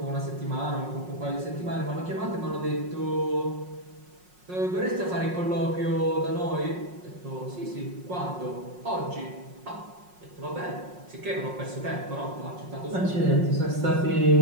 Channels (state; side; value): late; left; 5.5 ms